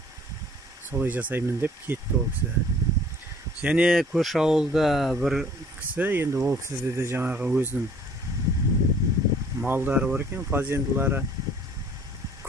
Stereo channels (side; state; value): both; normal; correlation 0.54